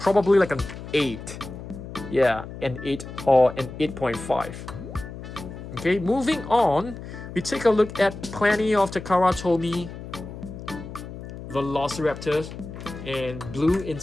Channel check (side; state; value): left; noise; hum, 11 dB below the sound